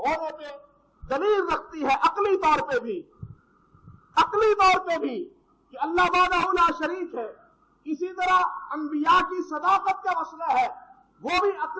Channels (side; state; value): both; identical; correlation 1.00